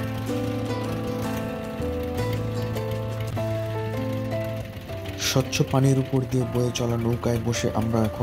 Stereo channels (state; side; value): noise; right; hum, 23 dB below the sound